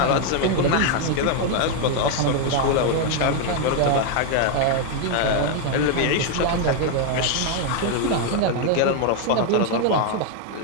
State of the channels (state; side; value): different; both; correlation 0.01